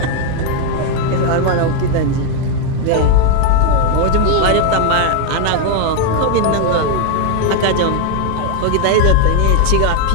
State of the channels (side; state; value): both; different; correlation 0.01